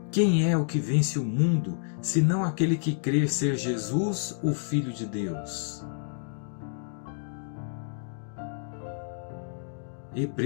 Quem é o que vence o mundo, senão aquele que crê ser Jesus, o Filho de Deus?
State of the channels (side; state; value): right; silent; digital silence